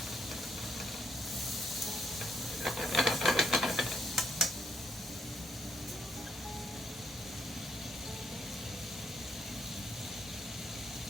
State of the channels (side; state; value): both; normal; correlation 0.75